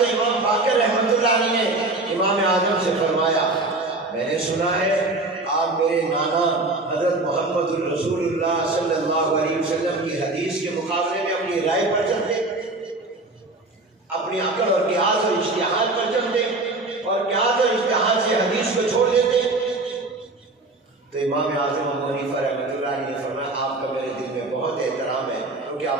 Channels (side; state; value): left; quieter; 3.0 dB